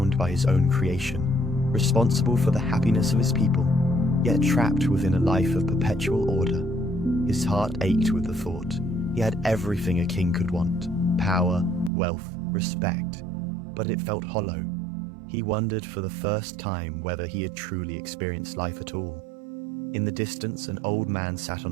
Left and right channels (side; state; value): left; drops out; at 11.9 s